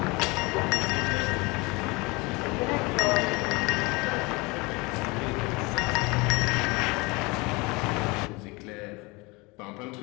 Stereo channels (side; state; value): right; quieter; 25.6 dB